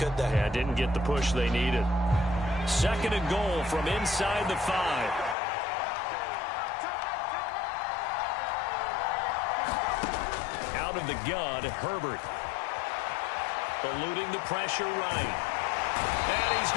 they? Yeah, didn't get the push they needed. 2nd and goal from inside the 5. Out of the gun, Herbert. Eluding the pressure right. And he's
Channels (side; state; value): right; drops out; at 5.4 s